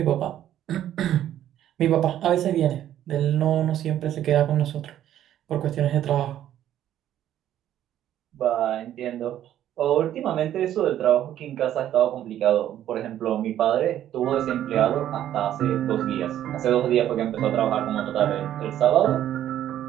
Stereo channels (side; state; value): left; quieter; 11.6 dB